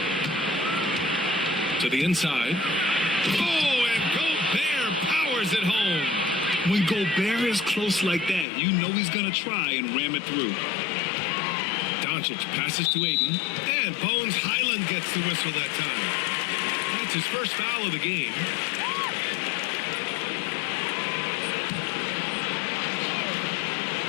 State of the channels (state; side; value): drops out; right; at 8.5 s